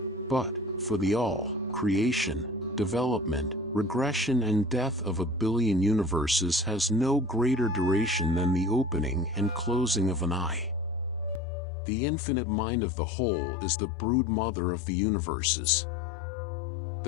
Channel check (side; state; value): right; drops out; at 11.4 s